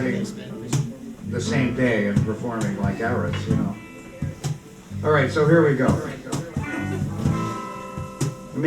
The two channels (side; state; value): both; identical; correlation 1.00